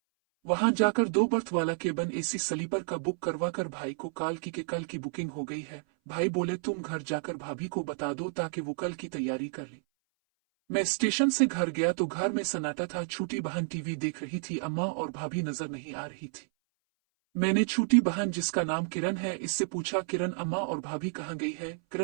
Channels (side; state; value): left; silent; 57 dB below the other